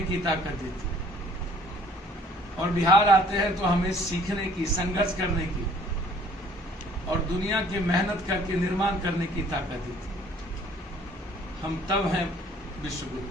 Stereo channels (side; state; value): both; normal; correlation 0.56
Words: की ताकत देती है। और बिहार आते हैं तो हमें सीखने की, संघर्ष करने की और दुनिया की मेहनत करके निर्माण करने की ताकत दी थी। हम तब हैं विश्वगुरु।